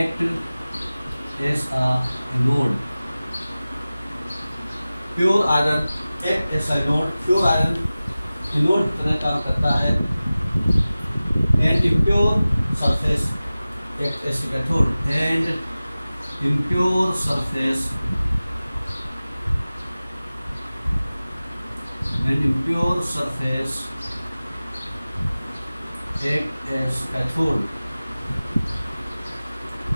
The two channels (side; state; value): both; inverted; correlation -0.97